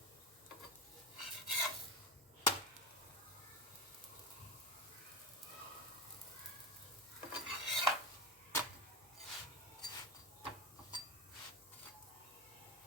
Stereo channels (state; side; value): normal; both; correlation 0.19